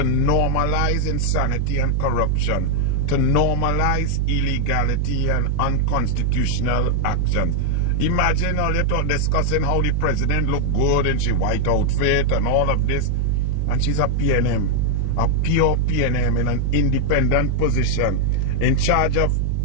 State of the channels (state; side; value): different; both; correlation 0.00